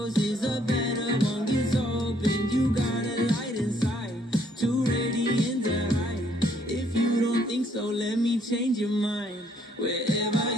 a better one gets open. You got a light inside, too radiant to hide. If you don't think so, let me change your mind. Wherever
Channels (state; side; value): normal; both; correlation 0.67